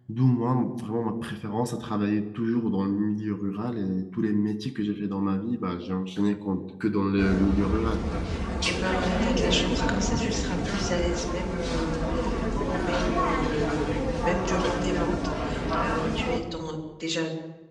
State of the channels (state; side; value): identical; both; correlation 1.00